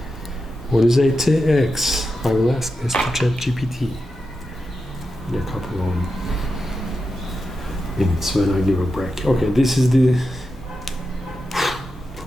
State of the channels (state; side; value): normal; both; correlation 0.89